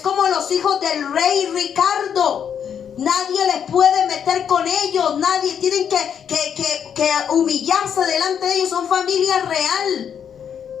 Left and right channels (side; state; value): right; quieter; 8.1 dB